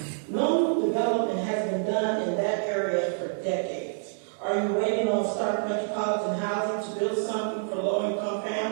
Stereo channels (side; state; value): left; silent; digital silence